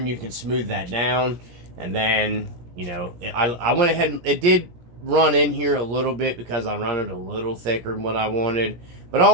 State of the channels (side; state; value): left; late; 17 ms